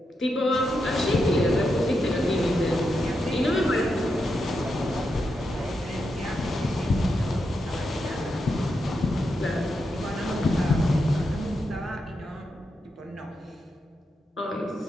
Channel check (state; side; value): normal; both; correlation 0.85